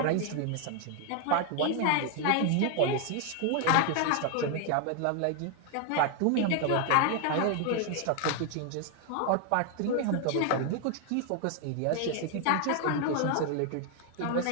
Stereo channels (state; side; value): different; both; correlation 0.00